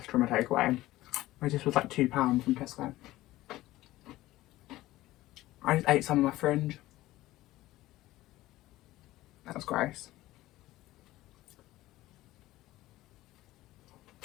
from a takeaway. This was like £2 from Tesco. I just ate some of my fringe. That was gross.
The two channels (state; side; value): quieter; right; 16.7 dB